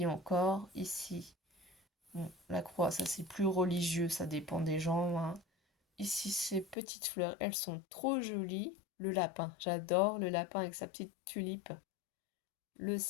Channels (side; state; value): right; drops out; at 6.8 s